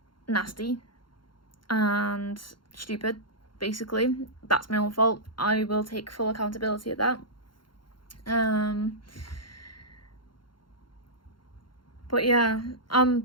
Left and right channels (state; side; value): late; right; 0.72 ms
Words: nasty and stupid basically. That's my own fault. I will take full accountability of that. But yeah,